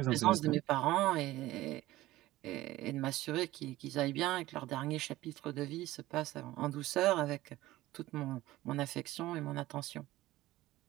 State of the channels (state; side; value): quieter; left; 16.8 dB